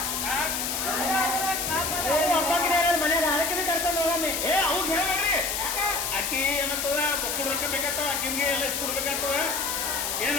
ಮನೆಯಾಗ ಅದಕ್ಕೆ ಕರ್ಕೊಂಡು ಹೋಗಮ್ಮಿ ಏ ಅವಾಗ ಹೇಳ್ಬೇಡ್ರಿ ಅಕ್ಕಿ ಏನತ್ತದ ಮಕ್ಕಳು ರೊಕ್ಕ ಬೇಕಾಗ್ತವ ಅಕ್ಕಿನ್ಗೆ ಎಲ್ಲ ಕೊಡ್ಬೇಕಾಗ್ತವ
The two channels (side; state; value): left; noise; hiss, 1 dB below the sound